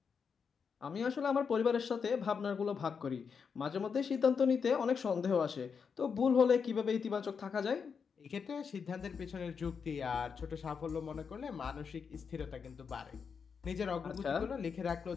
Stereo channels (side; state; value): right; quieter; 6.1 dB